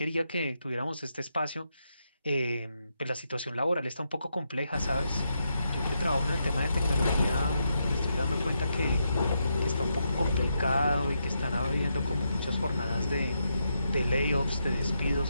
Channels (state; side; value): inverted; both; correlation -0.82